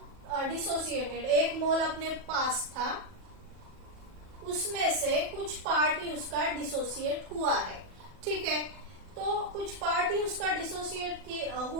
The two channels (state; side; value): late; left; 40 ms